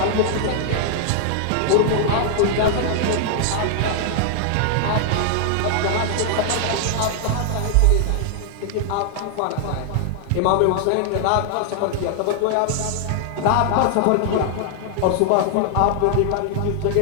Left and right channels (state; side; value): different; both; correlation 0.00